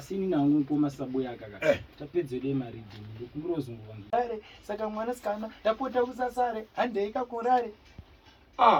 nangu pomasa Buyaka ka tapedze de maridhi ndokumurozungwa saka mwana sikana tapota usasare handei kakurare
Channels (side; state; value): both; identical; correlation 1.00